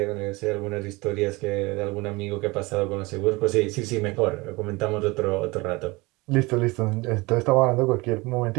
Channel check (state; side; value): quieter; left; 23.7 dB